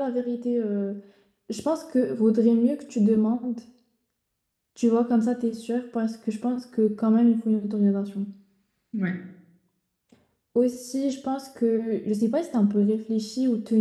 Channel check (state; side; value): identical; both; correlation 1.00